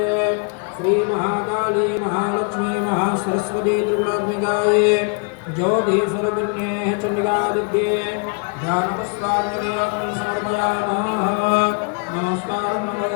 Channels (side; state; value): right; quieter; 38.0 dB